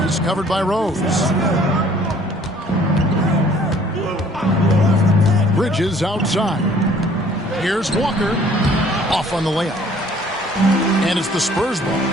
He's covered by Rose. Bridges outside. Here's Walker. Off on the layup. And it's the Spurs ball.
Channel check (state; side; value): normal; both; correlation 0.56